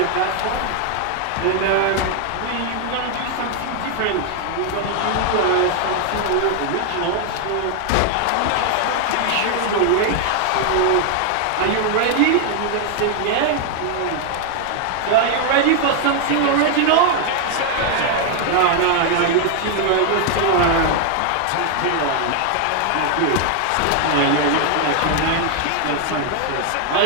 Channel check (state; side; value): different; both; correlation 0.00